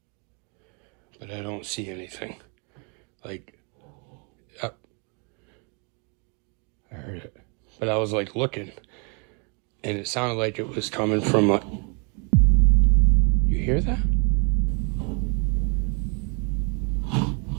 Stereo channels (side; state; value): left; quieter; 36.2 dB